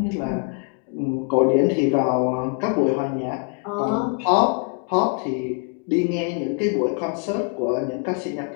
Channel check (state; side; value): quieter; right; 38.0 dB